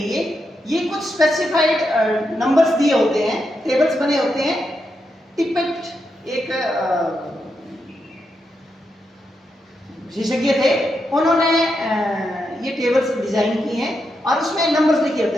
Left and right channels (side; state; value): both; normal; correlation 0.84